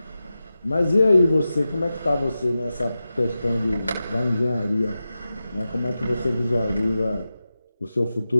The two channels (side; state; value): both; inverted; correlation -0.93